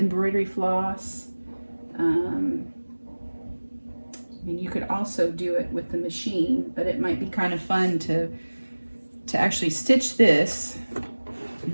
floss. I mean, you could also do it with the machine, but it might be kind of fun to actually stitch this.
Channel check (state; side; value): inverted; both; correlation -1.00